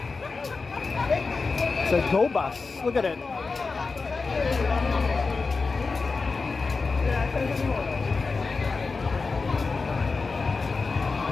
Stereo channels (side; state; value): right; quieter; 4.3 dB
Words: It's a go bus. Look at it.